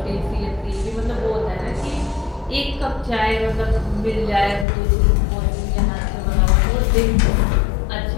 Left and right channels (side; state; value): right; drops out; at 4.7 s